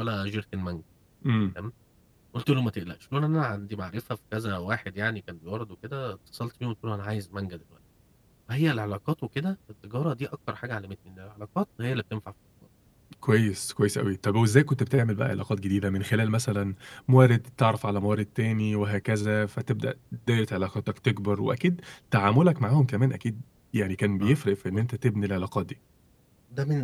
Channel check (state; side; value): identical; both; correlation 1.00